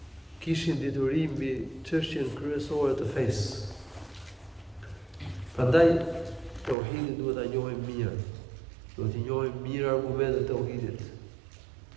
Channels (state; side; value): drops out; left; at 6.8 s